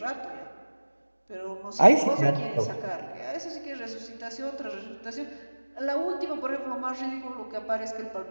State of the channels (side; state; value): both; inverted; correlation -1.00